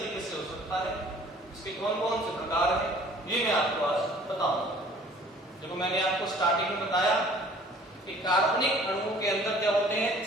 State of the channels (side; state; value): both; normal; correlation 0.52